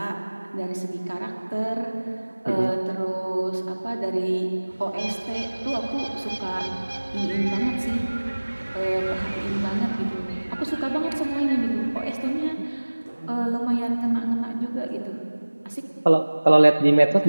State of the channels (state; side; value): inverted; both; correlation -1.00